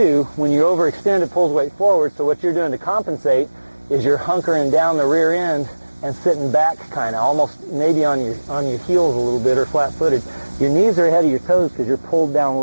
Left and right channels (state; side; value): inverted; both; correlation -1.00